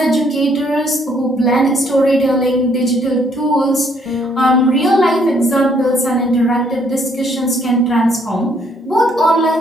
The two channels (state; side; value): normal; both; correlation 0.67